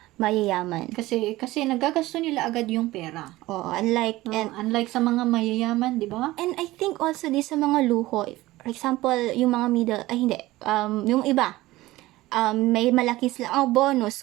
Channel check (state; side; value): quieter; left; 18.0 dB